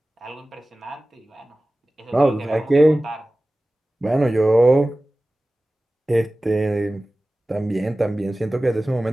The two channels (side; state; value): both; normal; correlation 0.97